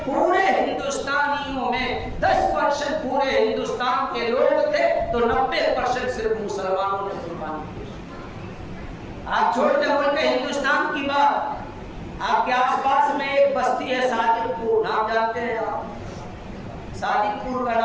پورے ہندوستانیوں میں 10% پورے ہندوستان کے لوگ تھے تو 90% صرف مسلمانوں نے قربانی پیش کی۔ آپ چھوٹے ملک ہندوستان کی بات، آپ کے آس پاس میں ایک بستی ہے صادق پور، نام جانتے ہیں آپ؟ صادق پور کا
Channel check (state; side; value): identical; both; correlation 1.00